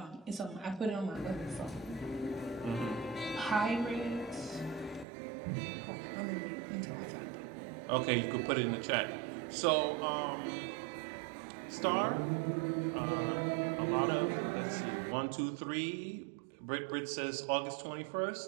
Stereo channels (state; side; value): drops out; left; at 5.1 s